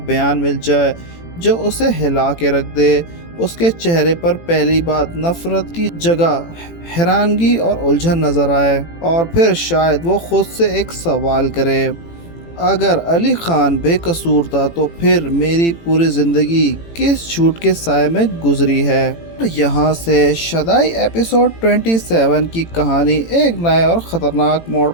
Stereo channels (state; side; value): late; right; 18 ms